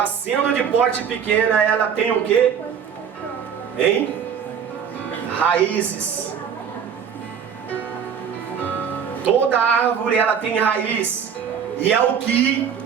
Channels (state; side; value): quieter; left; 7.5 dB